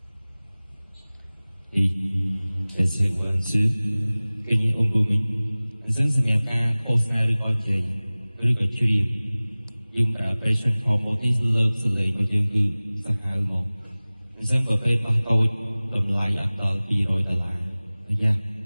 គេនិយាយអំពុំវិញអញ្ចឹងសម្រាប់ការឃោសនាឬក៏និយាយឬក៏ច្រៀងយើងប្រើ presenter mode នេះលើកសលេងរបស់យើងគឺសាហាវហ្មងអញ្ចឹងប្រភេទបោះតូចតម្លៃអត់ដល់$200យ៉ា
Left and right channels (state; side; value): inverted; both; correlation -0.99